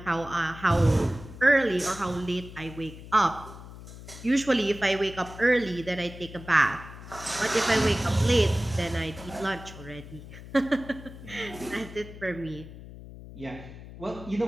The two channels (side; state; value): left; noise; hum, 15 dB below the sound